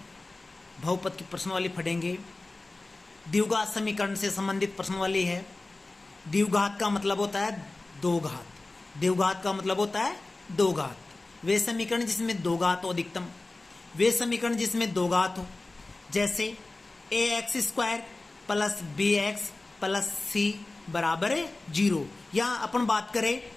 बहुपद की प्रश्न वाली पढ़ेंगे। द्विघात समीकरण से संबंधित प्रश्न वाली है। द्विघात का मतलब होता है दो घात। द्विघात का मतलब होता है दो घात। वे समीकरण जिसमें दो घात हो अधिकतम, वे समीकरण जिसमें दो घात हो, जैसे ax² plus bx plus c बराबर है 0। यहां अपन बात करें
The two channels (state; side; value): quieter; right; 3.1 dB